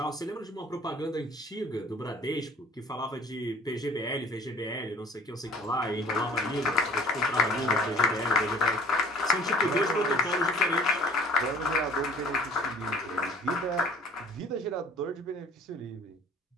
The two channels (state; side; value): normal; both; correlation 0.50